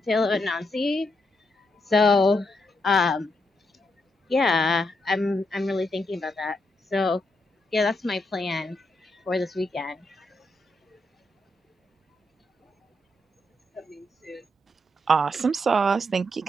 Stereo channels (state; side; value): normal; both; correlation 0.81